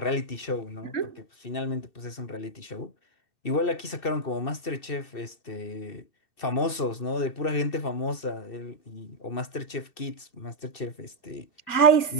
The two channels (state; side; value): late; right; 2.7 ms